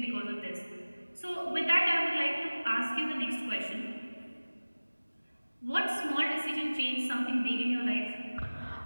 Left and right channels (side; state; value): both; inverted; correlation -1.00